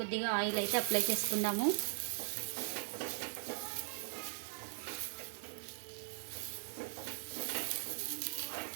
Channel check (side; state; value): left; silent; digital silence